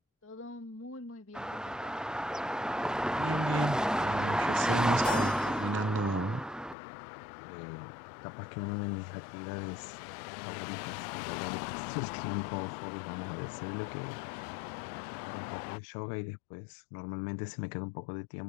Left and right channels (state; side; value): drops out; right; at 6.8 s